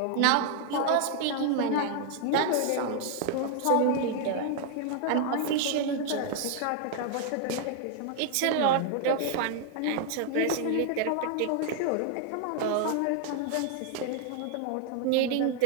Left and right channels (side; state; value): both; different; correlation 0.00